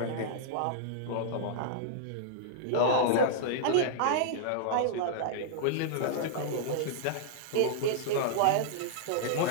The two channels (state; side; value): different; both; correlation -0.02